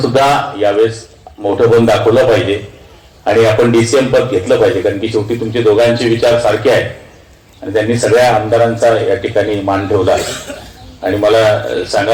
सुद्धा यावेळेस मोठं पण दाखवलं पाहिजे आणि आपण DCM पद घेतलं पाहिजे, कारण की शेवटी तुमचे दोघांचे विचार सारखे आहेत आणि त्यांनी सगळ्या आमदारांचा या ठिकाणी मान ठेवला आणि मला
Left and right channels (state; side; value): identical; both; correlation 1.00